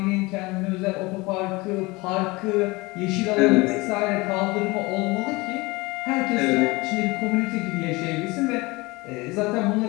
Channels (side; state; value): right; quieter; 23.4 dB